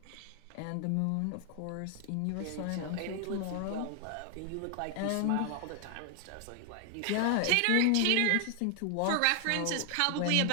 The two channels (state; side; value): different; both; correlation 0.00